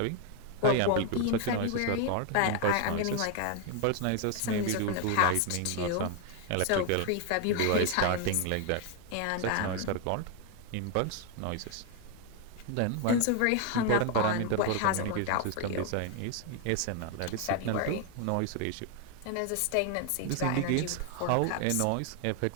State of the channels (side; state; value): both; different; correlation 0.01